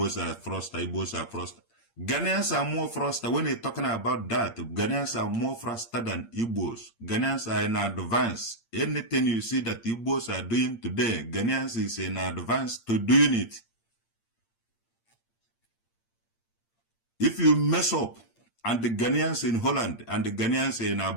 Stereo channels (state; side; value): late; right; 8.7 ms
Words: are froster, Igbos are froster. Ghanaians are more froster. When you're talking about that, Ghanaians are more froster than Igbos. Ghanaians are in advance. Anything you see that Igbos are doing today, Ghanaians is in advance to doing it. If you mess up, and the Ghanaians in Holland and the Ghanaians in